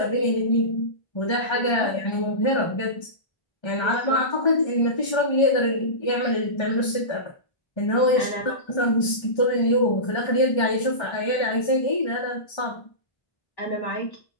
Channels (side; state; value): right; late; 1.3 ms